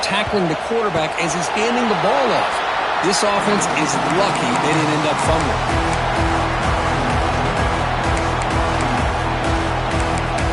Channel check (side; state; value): both; identical; correlation 1.00